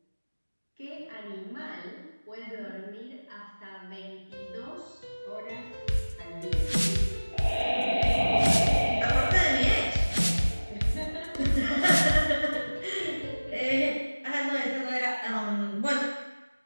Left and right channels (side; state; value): both; inverted; correlation -1.00